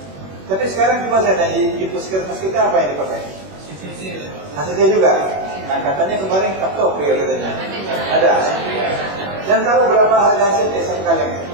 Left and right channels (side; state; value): left; late; 21 ms